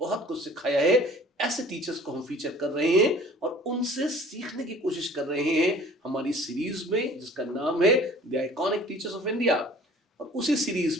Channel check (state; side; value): normal; both; correlation 0.49